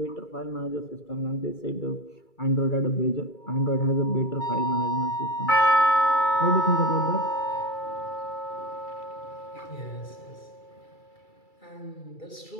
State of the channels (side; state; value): right; late; 2.3 ms